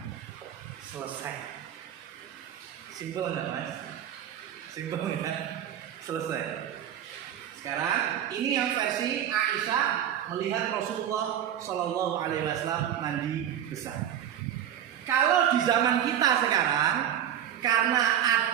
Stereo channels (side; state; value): left; quieter; 10.2 dB